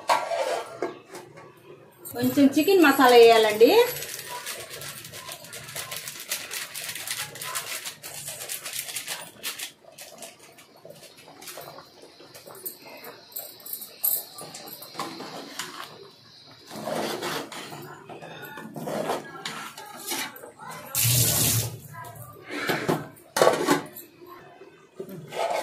కొంచెం చికెన్ మసాలా వేయాలండి.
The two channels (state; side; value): identical; both; correlation 1.00